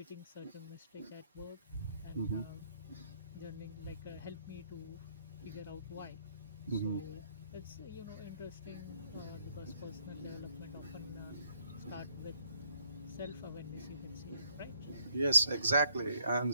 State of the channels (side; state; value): both; inverted; correlation -0.70